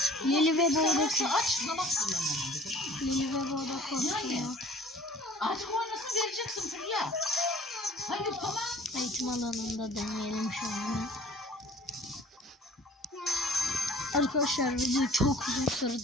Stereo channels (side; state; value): both; normal; correlation 0.49